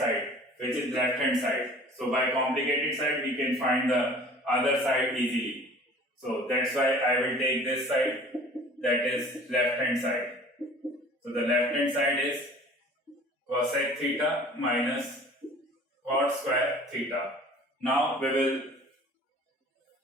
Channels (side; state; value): both; normal; correlation 0.47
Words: which is left hand side. So by complicated side we can find the other side easily. So that's why I will take this side, that is left hand side. So the left hand side is cosec theta minus cot square theta. Now we will